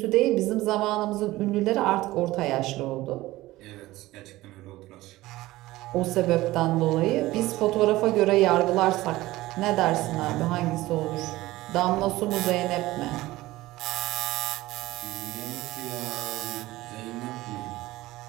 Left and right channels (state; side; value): quieter; left; 17.7 dB